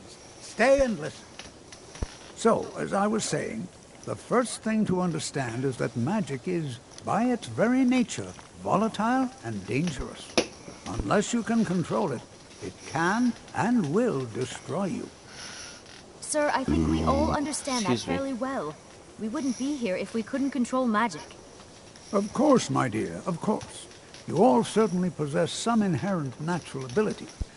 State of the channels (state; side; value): identical; both; correlation 1.00